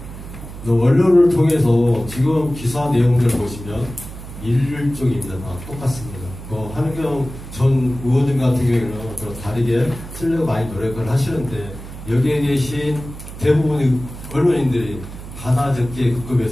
언론을 통해서 지금 기사 내용들을 보시면 일종입니다. 다 똑같습니다. 한은경 전 의원님 같은 경우에는 다르게 쓰려고 많이 노력을 하시는데 여기에 계신 대부분의 언론인들이 하나 적게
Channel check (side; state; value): right; noise; hum, 13 dB below the sound